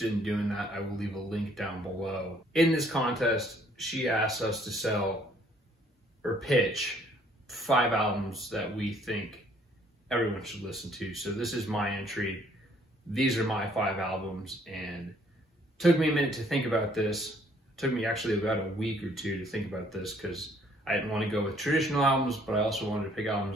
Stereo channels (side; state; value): both; normal; correlation 0.62